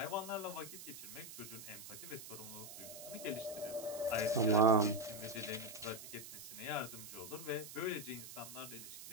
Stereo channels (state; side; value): noise; right; hiss, 12 dB below the sound